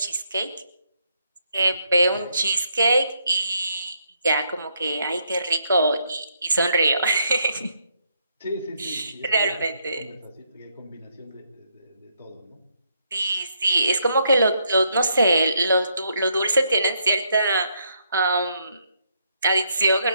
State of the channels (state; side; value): inverted; both; correlation -0.75